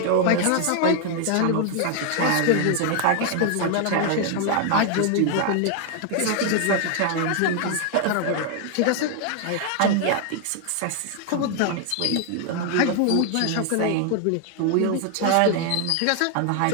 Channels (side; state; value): both; different; correlation 0.00